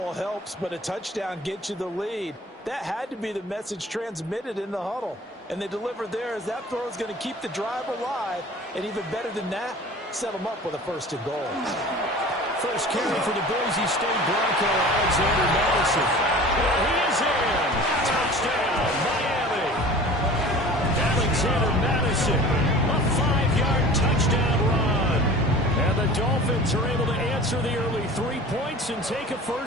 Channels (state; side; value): normal; both; correlation 0.42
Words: helps, but a touchdown gets you the lead. That had to be the message transmitted in the huddle. And they delivered there as that throw is going to keep the drive alive. And even better than that, set them up with a 1st and goal. First carry for the Boise State Bronco, Alexander Madison. And he is in. Touchdown, Miami. Alexander Madison, a 5-yard touchdown run. And the Dolphins are able to answer the early 3 points and take a